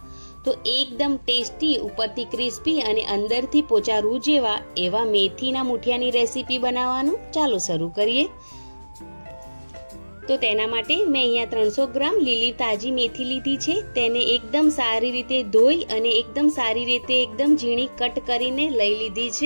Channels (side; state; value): both; inverted; correlation -1.00